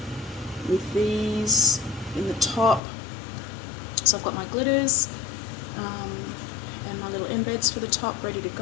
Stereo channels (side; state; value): right; drops out; at 2.8 s